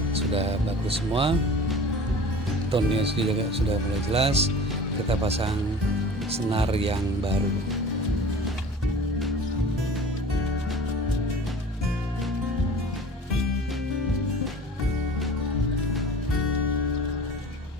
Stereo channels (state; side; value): normal; both; correlation 0.41